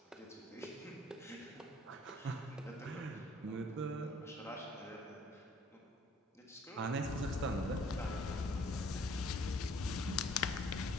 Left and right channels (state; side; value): normal; both; correlation 0.58